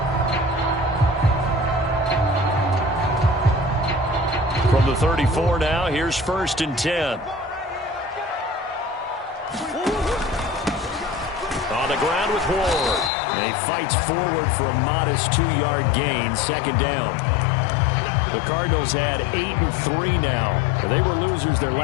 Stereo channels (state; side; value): drops out; right; at 13.1 s